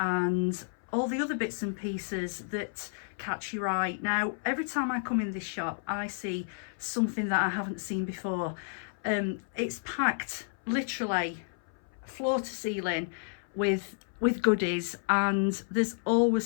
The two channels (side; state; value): right; silent; 57 dB below the other